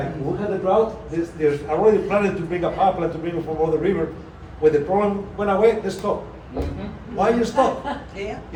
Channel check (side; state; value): both; identical; correlation 1.00